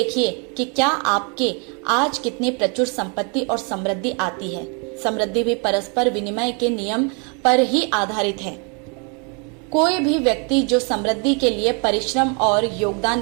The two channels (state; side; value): quieter; left; 35.4 dB